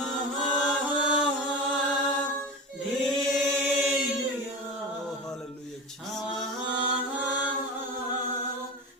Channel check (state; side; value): normal; both; correlation 0.26